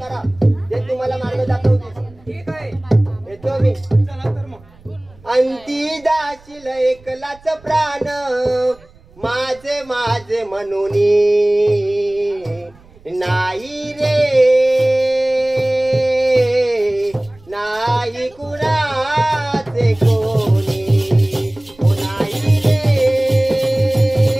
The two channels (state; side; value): noise; right; rumble, 26 dB below the sound